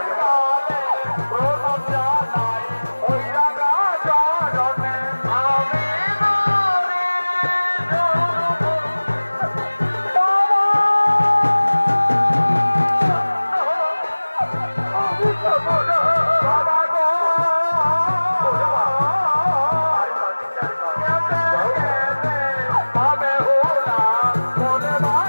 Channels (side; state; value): both; inverted; correlation -1.00